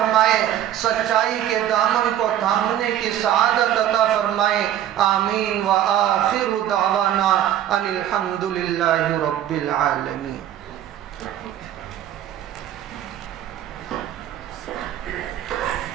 سچائی کے دامن کو تھامنے کی سعادت عطا فرمائے۔ آمین وآخر دعوانا ان الحمد للہ رب العالمین۔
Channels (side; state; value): left; quieter; 11.4 dB